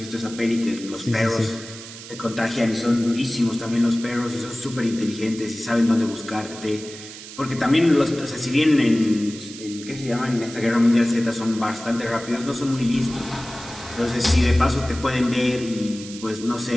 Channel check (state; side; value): noise; right; hiss, 14 dB below the sound